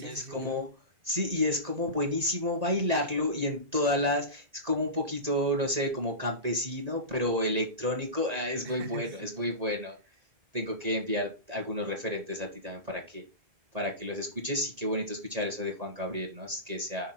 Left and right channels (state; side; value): late; left; 1.9 ms